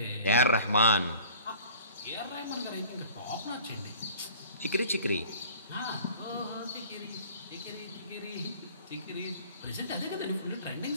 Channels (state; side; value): inverted; both; correlation -0.48